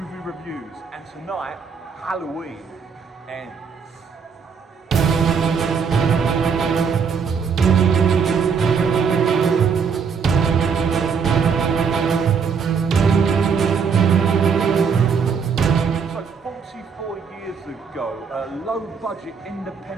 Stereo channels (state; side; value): quieter; left; 6.1 dB